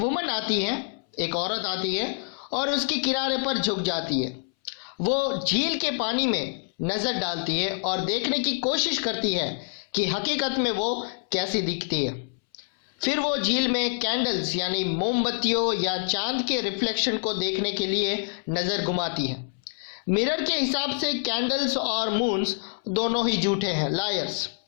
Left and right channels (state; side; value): silent; right; 61 dB below the other